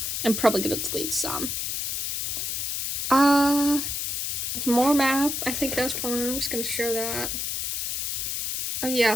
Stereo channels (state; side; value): noise; left; hiss, 1 dB below the sound